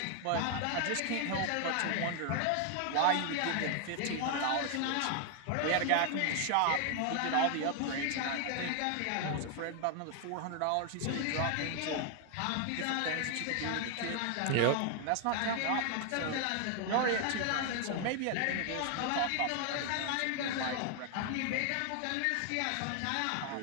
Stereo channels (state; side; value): different; both; correlation 0.00